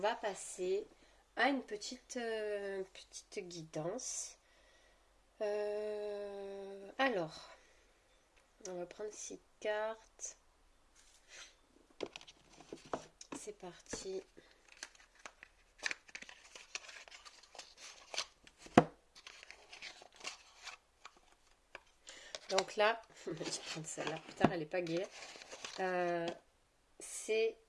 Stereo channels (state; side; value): identical; both; correlation 1.00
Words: passer à une petite guidance. Alors, on va prendre 6 cartes. C'est parti. Donc là, je vais prendre celle-là. Putain, elle n'est pas gaie. C'est...